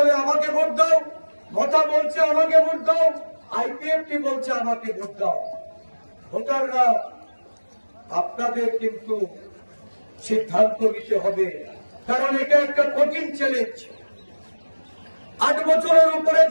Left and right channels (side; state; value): both; inverted; correlation -1.00